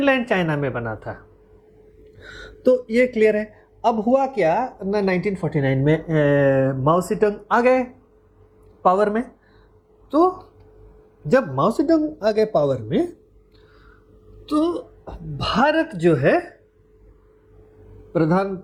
चाइना में बना था। तो ये क्लियर है। अब हुआ क्या ना, 1949 में माओ सेडुंग आ गए पावर में। तो जब माओ सेडुंग आ गए पावर में, तो भारत जो है,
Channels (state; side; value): identical; both; correlation 1.00